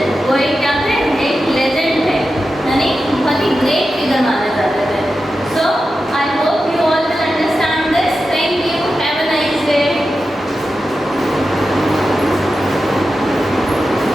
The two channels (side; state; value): both; normal; correlation 0.91